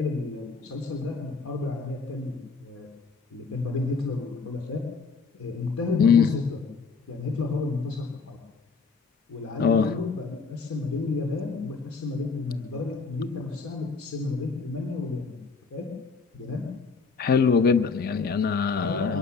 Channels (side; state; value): right; quieter; 4.9 dB